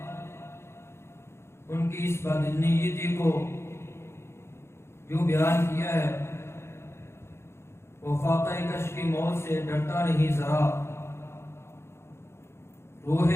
ان کی اس بدنیتی کو جو بیان کیا ہے، وہ فاقہ کش کی موت سے ڈرتا نہیں ذرا، روح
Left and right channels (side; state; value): right; late; 0.12 ms